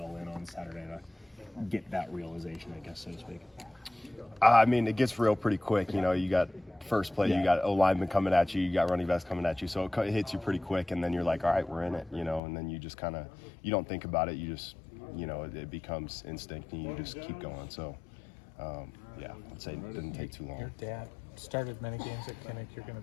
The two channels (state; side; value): drops out; right; at 12.4 s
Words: in on Saturday to get that realization, I guess, so to speak? It gets real pretty quick. You got first play, you got O lineman coming at you, you got running backs coming at you, so it hits you pretty quick, and then you're like, all right, we're in it, and then you just kind of, you don't think about it, you just, it becomes instinct, and you just keep going. So, I'd say it didn't take too long. Your dad started many games at Kinnick. You're going